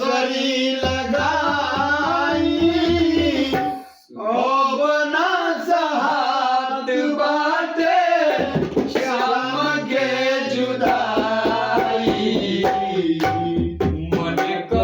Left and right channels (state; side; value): identical; both; correlation 1.00